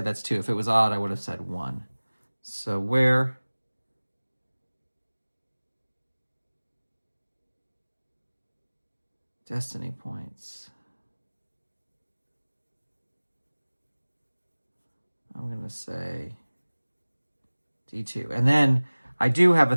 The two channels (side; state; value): both; inverted; correlation -1.00